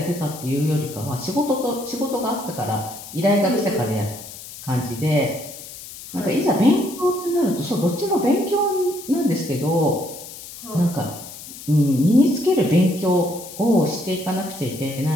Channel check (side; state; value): left; noise; hiss, 14 dB below the sound